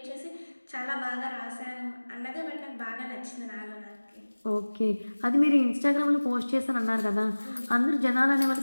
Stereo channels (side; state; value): both; inverted; correlation -1.00